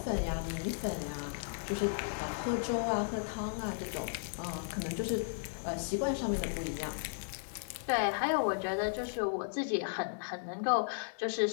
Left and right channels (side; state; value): right; silent; digital silence